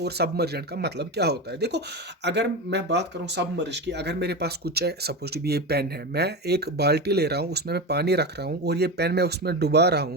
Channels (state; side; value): normal; both; correlation 0.20